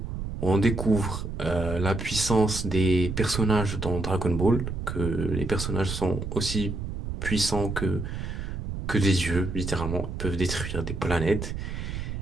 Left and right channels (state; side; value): noise; right; rumble, 5 dB below the sound